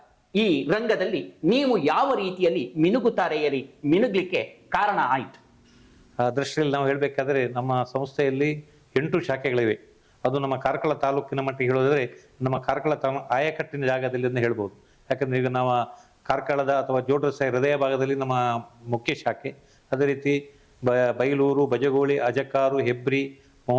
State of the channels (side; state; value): both; identical; correlation 1.00